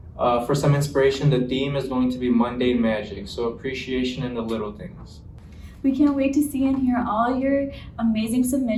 for some inspiration, the theme is going to be mundane magic, so appreciation in the little things. We can't wait to see and hear all your amazing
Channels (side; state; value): both; identical; correlation 1.00